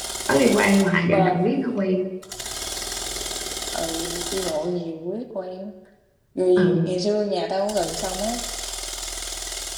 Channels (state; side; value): identical; both; correlation 1.00